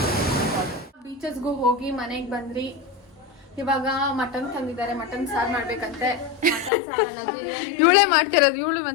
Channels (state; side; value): drops out; right; at 6.7 s